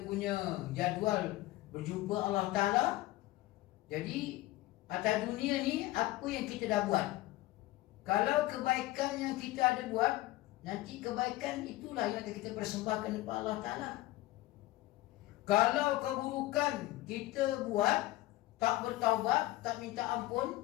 punya jadual berjumpa Allah Ta'ala, jadi atas dunia ni apa yang kita dah buat. Kalau kebaikan yang kita ada buat, nanti kebaikan itulah yang akan kita persembahkan kepada Allah Ta'ala. Kalau keburukan kita buat, tak bertaubat, tak minta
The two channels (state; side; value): quieter; right; 17.4 dB